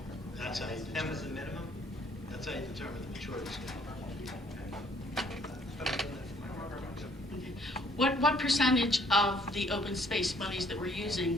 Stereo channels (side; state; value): both; normal; correlation 0.63